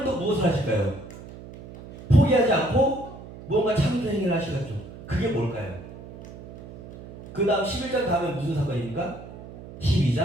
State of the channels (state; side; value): noise; right; hum, 15 dB below the sound